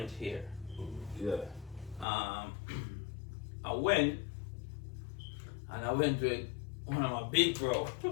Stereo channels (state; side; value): drops out; right; at 2.1 s